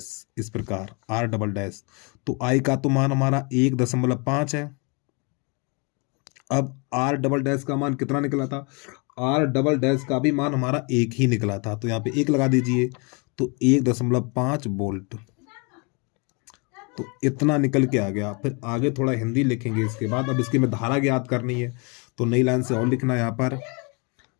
इस प्रकार R डबल डैश। तो I का तो मान हमारा 1.5 है, अब R डबल डैश का मान कितना निकला था, आर डबल डैश का भी मान हमारा एक ही निकला था, तो यहाँ पे एक लगा दीजिए, तो 1.5 वोल्ट, तो इतना निकल के आ गया। फिर आगे थोड़ा हिंदी लिखेंगे इसके बाद। अब इसकी में धारा ज्ञात करनी है, तो नई लाइन से और लिखना है यहाँ पर।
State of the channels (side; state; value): right; quieter; 32.3 dB